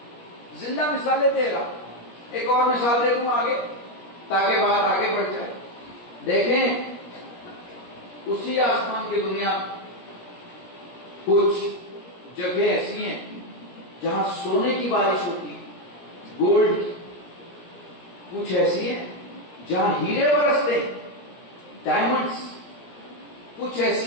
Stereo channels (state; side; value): late; right; 17 ms